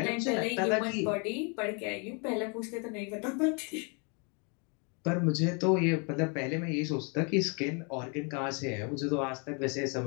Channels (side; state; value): right; quieter; 34.9 dB